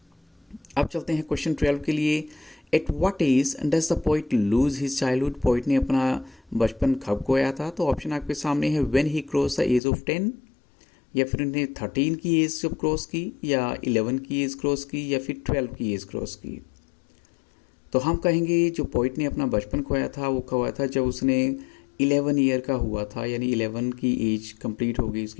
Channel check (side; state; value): right; drops out; at 9.8 s